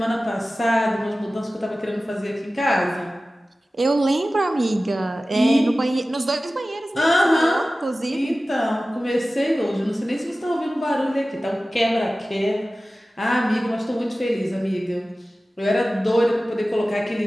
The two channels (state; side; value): normal; both; correlation 0.96